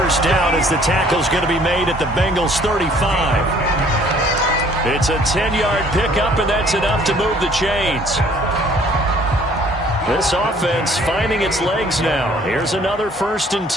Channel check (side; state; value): both; normal; correlation 0.58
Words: down as the tackle's going to be made at the Bengals 35. It's a 10-yard pickup, and that's enough to move the chains. This offense finding its legs now. Here's another 1st and